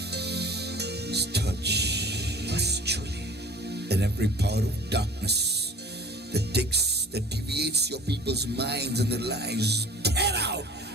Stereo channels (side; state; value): both; normal; correlation 0.46